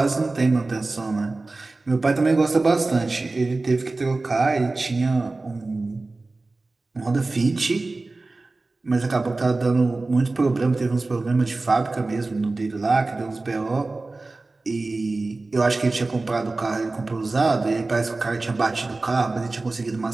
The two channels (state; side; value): quieter; left; 3.3 dB